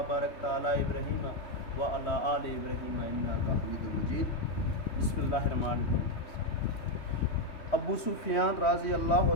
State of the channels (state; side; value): late; right; 3.2 ms